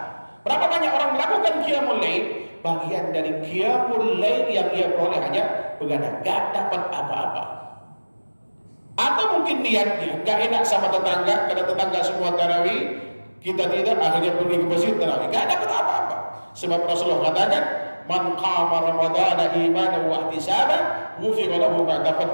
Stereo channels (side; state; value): both; inverted; correlation -1.00